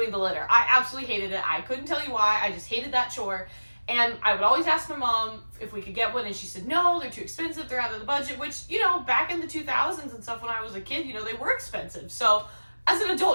the litter. I absolutely hated it. I couldn't tell you why. I just hated that chore. And I would always ask my mom if we could get one, and she said, no, they're too expensive, they're out of the budget, which, you know, back in the 2000s and stuff when I was a kid, you know, they were expensive. So as an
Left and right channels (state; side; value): inverted; both; correlation -1.00